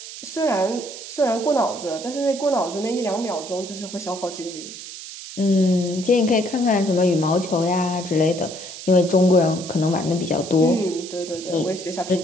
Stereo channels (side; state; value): right; noise; hiss, 12 dB below the sound